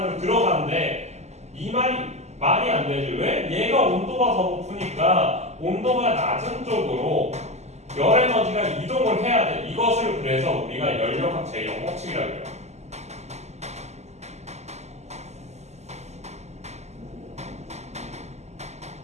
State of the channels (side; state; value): left; late; 0.33 ms